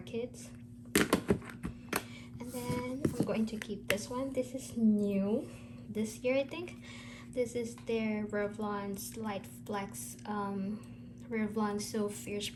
And then I'm going to keep this one. This is new this year, I think. This is their Revlon Slight Flex Revlon So Fierce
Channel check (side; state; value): both; identical; correlation 1.00